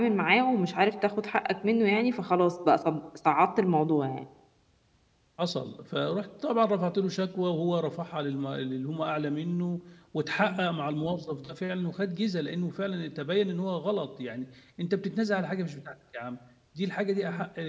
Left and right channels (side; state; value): both; identical; correlation 1.00